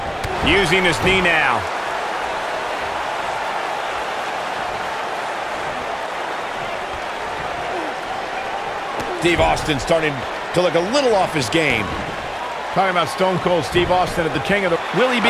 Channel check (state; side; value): identical; both; correlation 1.00